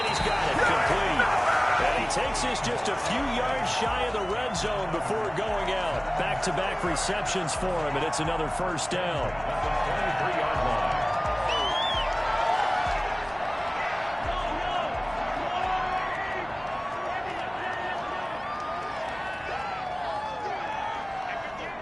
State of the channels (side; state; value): right; noise; hum, 22 dB below the sound